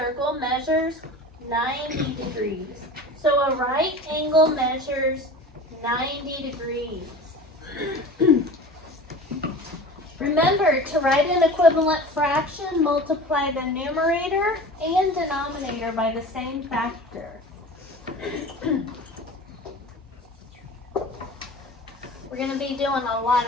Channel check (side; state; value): both; normal; correlation 0.37